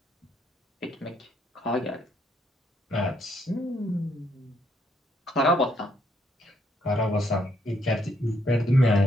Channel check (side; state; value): both; normal; correlation 0.72